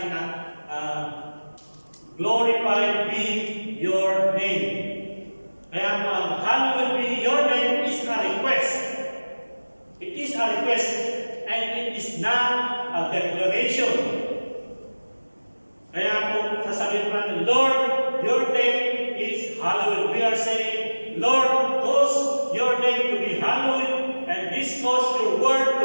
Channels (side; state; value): both; inverted; correlation -1.00